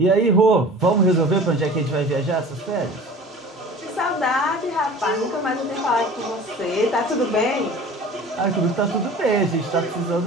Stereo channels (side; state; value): both; normal; correlation 0.41